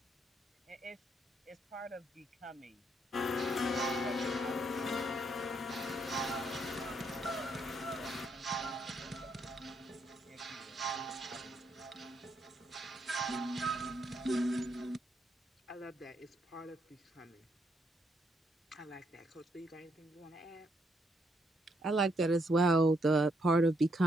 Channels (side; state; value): both; normal; correlation 0.75